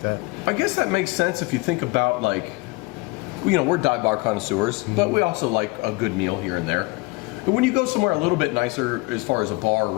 that. I guess that makes sense if you think about, like, we're dive bar connoisseurs, but we also like a good meal here and there. But when you go somewhere a little bit nicer as far as a bar or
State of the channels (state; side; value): quieter; right; 24.8 dB